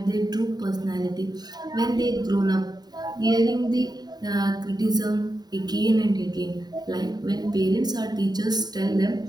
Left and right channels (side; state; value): left; late; 0.20 ms